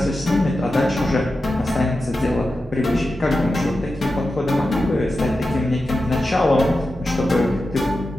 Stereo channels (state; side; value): normal; both; correlation 0.91